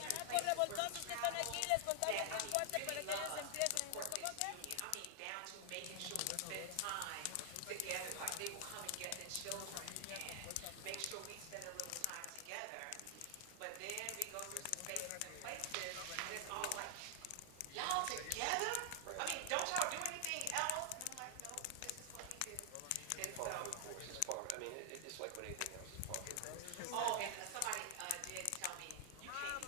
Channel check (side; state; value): both; different; correlation 0.00